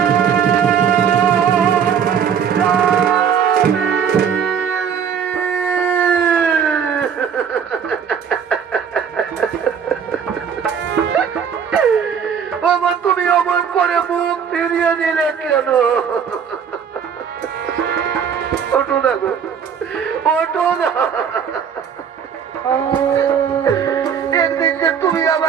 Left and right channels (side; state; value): left; quieter; 7.4 dB